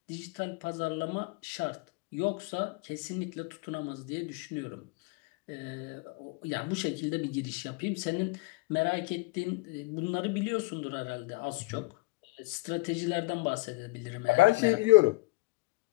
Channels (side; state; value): right; quieter; 24.1 dB